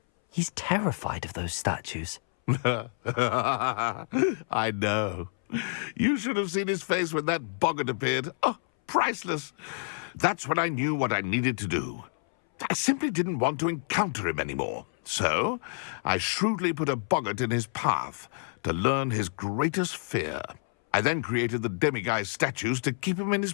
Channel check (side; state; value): right; silent; 59 dB below the other